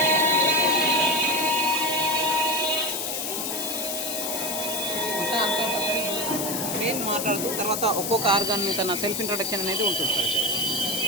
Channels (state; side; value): noise; left; hiss, 3 dB below the sound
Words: అంతా ట్రైన్ మాట్లాడుతూ తర్వాత ఒక్కొక్క ఆర్గాన్ తన సెల్ఫ్ ఇంట్రొడక్షన్ అనేది ఉంటుంది సార్.